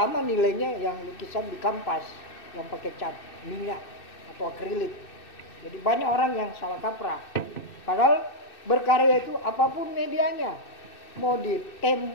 nilainya yang lukisan di kanvas yang pakai cat minyak atau akrilik. Jadi banyak orang yang salah kaprah. Padahal berkarya itu apapun medianya, mau di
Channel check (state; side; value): late; right; 2.6 ms